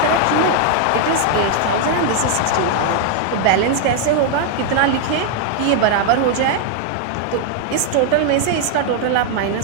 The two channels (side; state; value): both; different; correlation 0.00